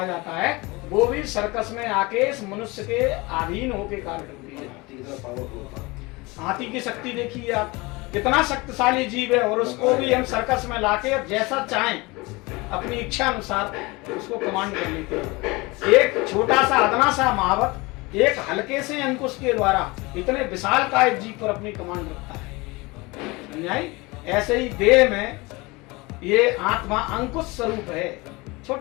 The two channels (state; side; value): quieter; right; 24.1 dB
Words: जाता है वो भी सर्कस में आके इस मनुष्य के अधीन होके कार्य करती है। हाथी की शक्ति देखिए आप, कितना शक्तिशाली जीव है और उसको भी हम सर्कस में लाके जैसा चाहें अपनी इच्छा अनुसार उसको कमांड कर लेते हैं। एक छोटा सा अदना सा महावत एक हल्के से अंकुश के द्वारा इतने विशाल काय जीव पर अपनी कमांड रखता है। समझाई? ऐसे ही देह में ये आत्मा अंकुश स्वरूप है,